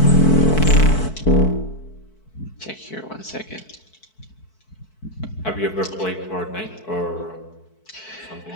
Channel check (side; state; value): right; late; 4.6 ms